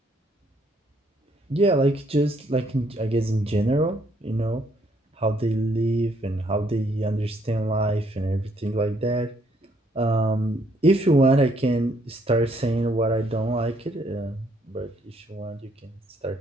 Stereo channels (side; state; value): both; normal; correlation 0.69